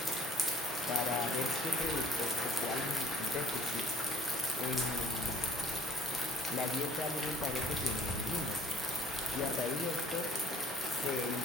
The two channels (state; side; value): normal; both; correlation 0.54